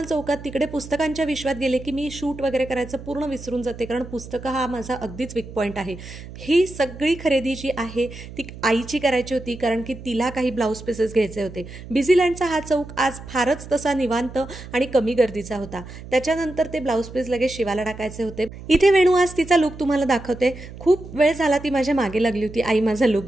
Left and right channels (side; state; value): right; noise; hum, 14 dB below the sound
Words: चौकात. तिकडे पुस्तकांच्या विश्वात गेले की मी शूट वगैरे करायचं पूर्ण विसरून जाते, कारण पुस्तकं हा माझा अगदीच वीक पॉईंट आहे. ही सगळी खरेदी जी आहे ती आईची करायची होती, कारण की तिला काही ब्लाऊज पीसेस घ्यायचे होते. बिझीलँडचा हा चौक आज फारच तसा निवांत आणि कमी गर्दीचा होता. त्याच्यानंतर ते ब्लाऊज पीस लगेच शिवायला टाकायचे होते. इथे वेणू आज तिचा लुक तुम्हाला दाखवते. खूप वेळ झाला ती माझ्या मागे लागली होती, आई माझा लुक